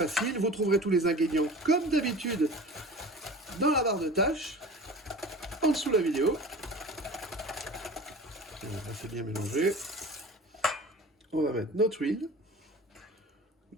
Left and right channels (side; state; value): both; normal; correlation 0.38